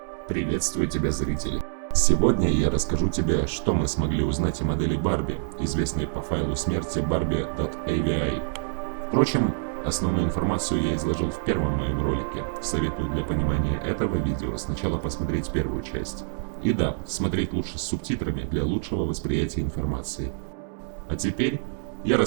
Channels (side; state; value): left; silent; 60 dB below the other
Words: Приветствую тебя, зрители! Сегодня я расскажу тебе, что мы смогли узнать о модели Барби, известной по файлу смерти barbie.avi. Впрочем, основную информацию я изложил в первом моем ролике. Советую для понимания этого видео сначала посмотреть первую часть. И да, смотреть лучше с субтитрами для лучшего восприятия информации. А теперь я